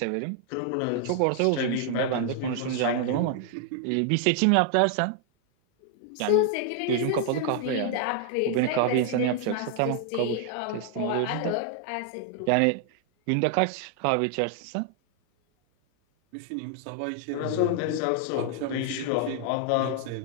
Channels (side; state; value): both; different; correlation 0.00